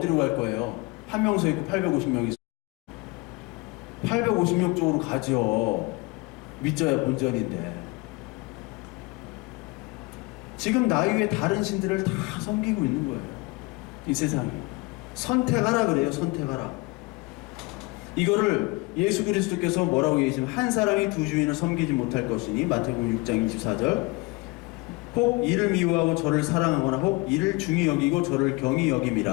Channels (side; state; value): right; quieter; 25.2 dB